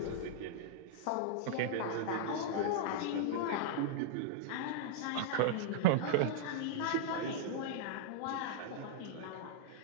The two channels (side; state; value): both; different; correlation -0.01